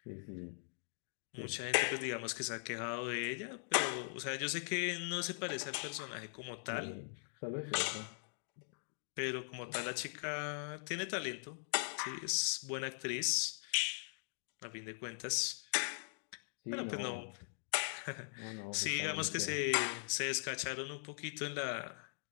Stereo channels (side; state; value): right; silent; digital silence